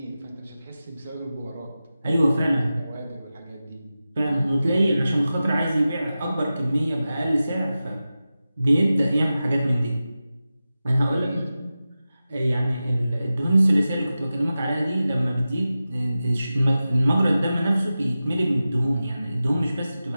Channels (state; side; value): inverted; both; correlation -0.94